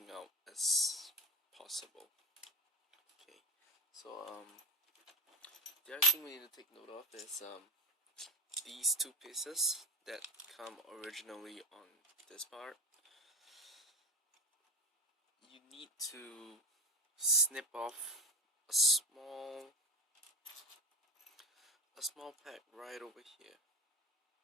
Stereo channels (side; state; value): both; normal; correlation 0.20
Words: out as possible. Okay, so the other thing we need to take note of is these two pieces that come originally on this part. You need to snip off a small pack right over here.